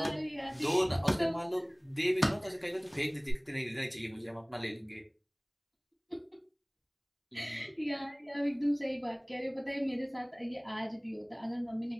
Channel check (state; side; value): identical; both; correlation 1.00